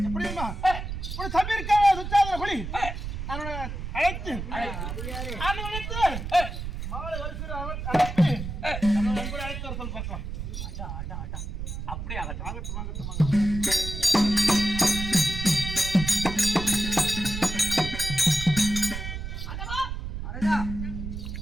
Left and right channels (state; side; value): noise; right; rumble, 6 dB below the sound